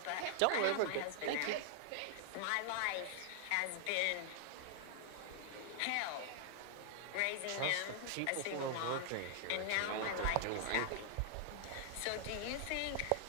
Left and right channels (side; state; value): both; different; correlation -0.01